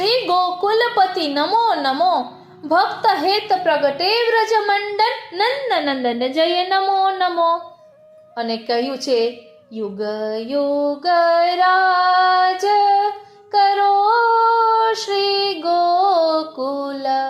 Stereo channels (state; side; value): identical; both; correlation 1.00